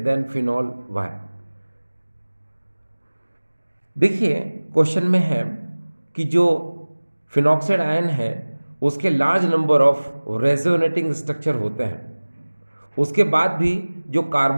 than phenol, why. देखिए question में है कि जो phenoxide ion है उसके large number of resonating structure होते हैं, उसके बाद भी जो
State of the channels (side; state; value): both; inverted; correlation -1.00